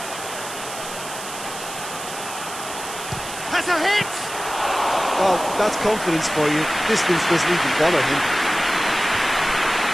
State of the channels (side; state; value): right; noise; hiss, 10 dB below the sound